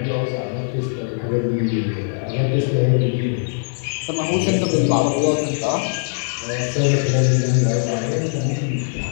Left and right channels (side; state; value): right; silent; 65 dB below the other